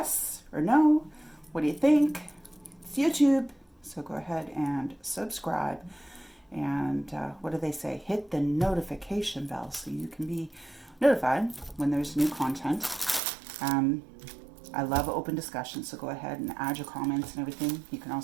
or no? What do you think? It's YouTube, so go ahead and subscribe. And what do they say? Hit the notification bell so you can be notified when there's new content. I love open discussion, so go ahead and add your comments and everything. You can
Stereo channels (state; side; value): drops out; left; at 13.2 s